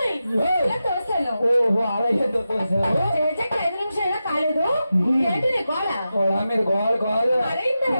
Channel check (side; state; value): both; inverted; correlation -0.91